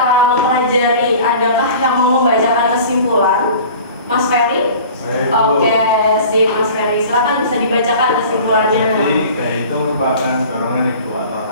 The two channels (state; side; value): inverted; both; correlation -0.43